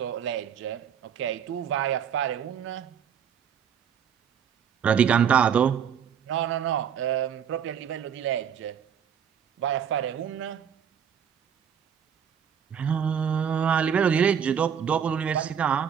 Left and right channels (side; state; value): left; quieter; 8.0 dB